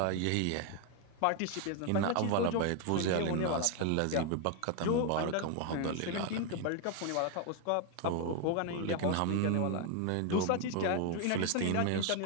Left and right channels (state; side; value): different; both; correlation 0.01